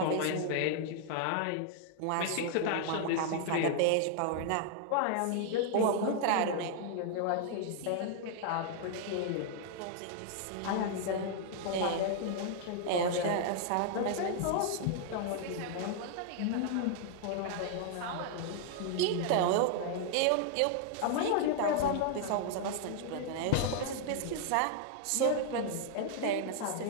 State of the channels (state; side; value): different; both; correlation 0.00